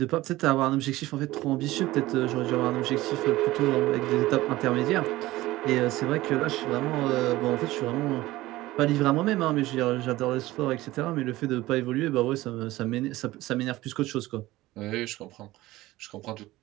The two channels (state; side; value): quieter; left; 17.6 dB